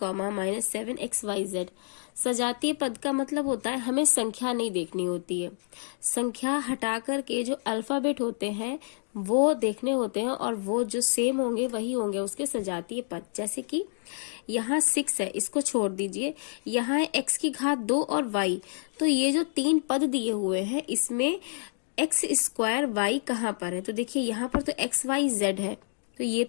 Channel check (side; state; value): right; silent; 59 dB below the other